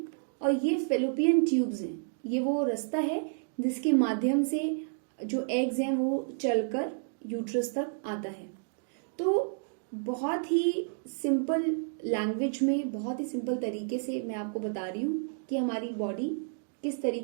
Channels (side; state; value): left; silent; digital silence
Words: और ये फेलोपियन ट्यूब्स हैं। ये वो रास्ता है जिसके माध्यम से जो एग्स हैं वो चलकर यूट्रस तक आता है। तो बहुत ही सिंपल लैंग्वेज में, बहुत ही सिंपल तरीके से मैं आपको बता रही हूँ कि हमारी बॉडी किस